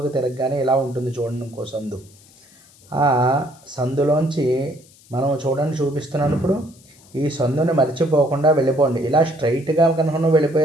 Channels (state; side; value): noise; left; hiss, 27 dB below the sound